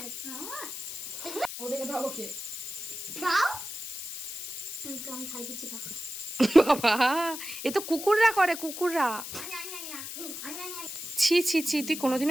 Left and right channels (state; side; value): noise; left; hiss, 8 dB below the sound